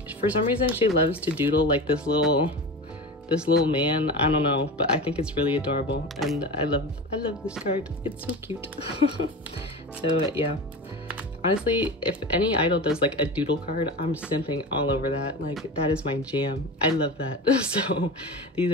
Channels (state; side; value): normal; both; correlation 0.28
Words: For some reason, she loves to doodle like this little man. I don't know, but I think it's really adorable, and I love this card. It's so cute. So yeah. Honestly, if any idol does like a doodle card, I'm simping all over that. Like, that is my jam. I love that. So these